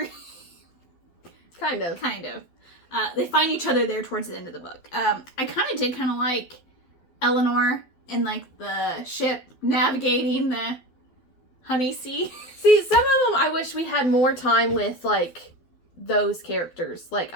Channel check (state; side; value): late; right; 12 ms